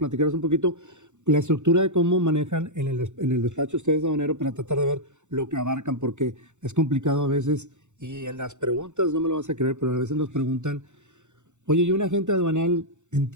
un poquito la estructura de cómo manejan en el despacho ustedes de aduanero para tratar de ver lo que abarcan, porque es complicado a veces. Y en las preguntas, no me lo vas a creer, pero a veces nos preguntan, oye, ¿y un agente aduanal en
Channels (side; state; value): left; late; 0.84 ms